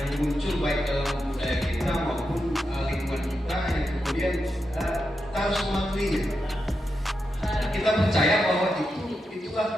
muncul baik dalam budaya kita maupun lingkungan kita yang kemudian kita harus mematuhinya. Kita percaya bahwa itulah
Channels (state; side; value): normal; both; correlation 0.87